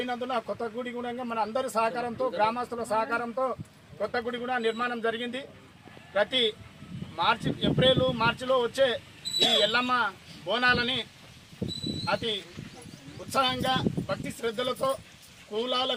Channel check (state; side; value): identical; both; correlation 1.00